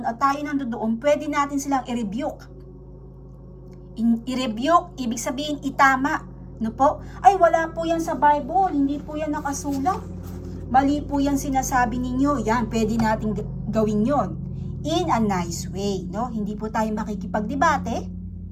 at tayo nandoon, pwede natin silang i-rebuke. I-rebuke, ibig sabihin itama. No po? Ay, wala po yan sa Bible. Hindi po yan nakasulat. Mali po yan sinasabi ninyo. Yan, pwede natin gawin yon in a nice way. No? Hindi po tayo makikipagdebate.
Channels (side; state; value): both; identical; correlation 1.00